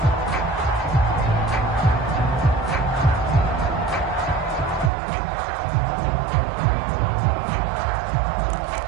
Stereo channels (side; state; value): left; drops out; at 4.9 s